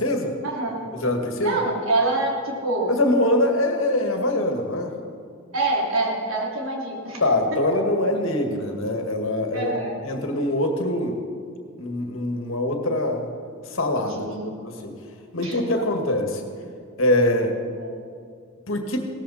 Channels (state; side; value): normal; both; correlation -0.11